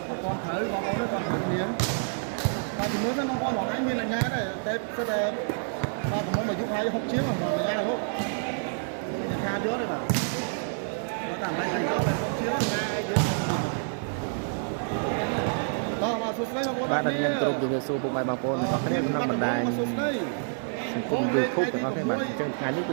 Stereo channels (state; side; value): silent; left; digital silence